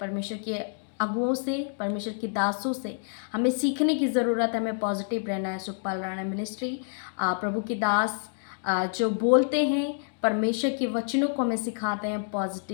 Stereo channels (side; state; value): right; silent; digital silence